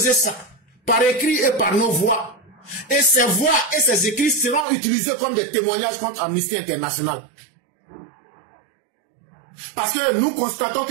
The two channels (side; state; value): left; drops out; at 4.7 s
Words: ça par écrit et par nos voix. Et ces voix et ces écrits seront utilisés comme des témoignages contre Amnesty International. Parce que nous constatons